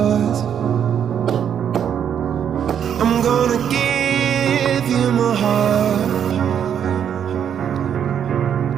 I'm gonna give you my heart,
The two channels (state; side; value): quieter; left; 8.7 dB